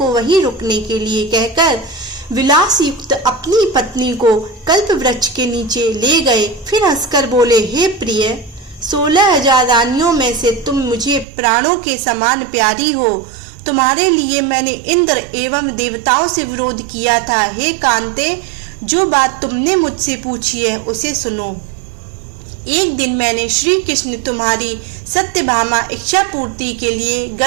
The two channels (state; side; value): drops out; left; at 11.2 s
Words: वहीं रुकने के लिए कहकर विलास युक्त अपनी पत्नी को कल्प वृक्ष के नीचे ले गए। फिर हंसकर बोले, हे प्रिय, 16,000 रानियों में से तुम मुझे प्राणों के समान प्यारी हो। तुम्हारे लिए मैंने इंद्र एवं देवताओं से विरोध किया था। हे कांते, जो बात तुमने मुझसे पूछी है उसे सुनो। एक दिन मैंने श्री कृष्ण तुम्हारी सत्यभामा इच्छा पूर्ति के लिए